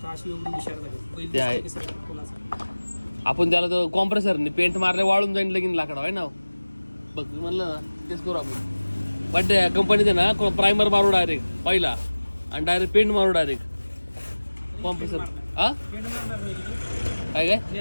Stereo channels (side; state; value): both; inverted; correlation -1.00